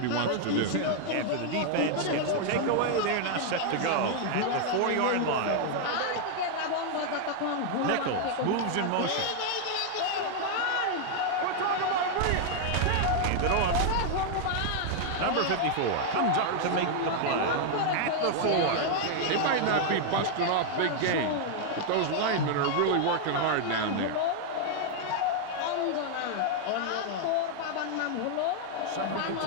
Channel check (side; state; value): both; different; correlation 0.00